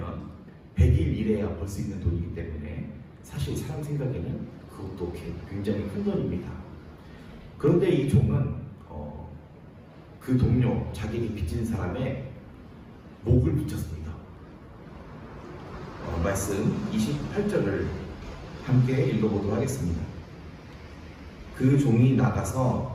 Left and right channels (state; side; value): identical; both; correlation 1.00